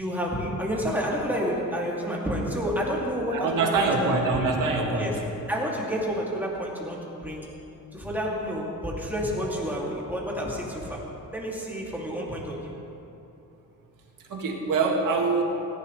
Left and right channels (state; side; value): normal; both; correlation 0.28